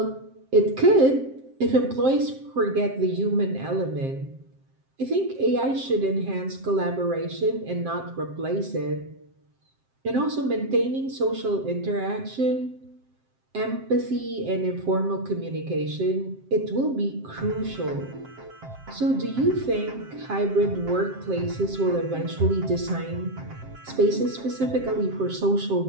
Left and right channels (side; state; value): left; late; 7.6 ms